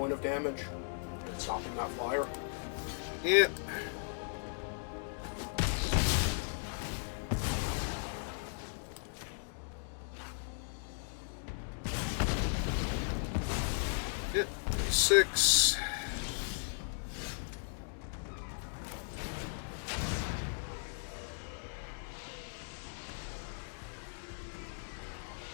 of damage and stopping that flyer. Yeah. Yep. 6.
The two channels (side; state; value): right; silent; digital silence